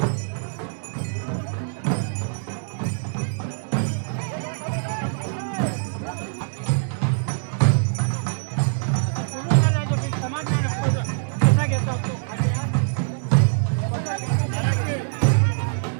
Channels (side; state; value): left; silent; digital silence